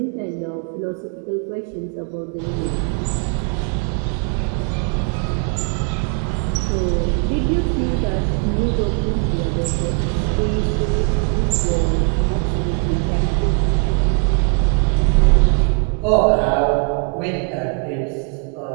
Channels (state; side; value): quieter; left; 35.4 dB